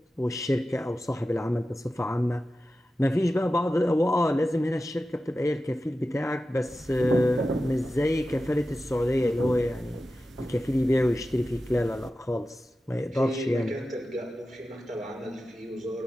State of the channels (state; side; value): normal; both; correlation 0.93